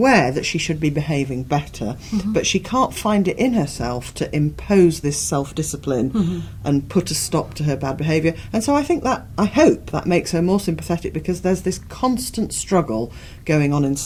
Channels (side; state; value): both; identical; correlation 1.00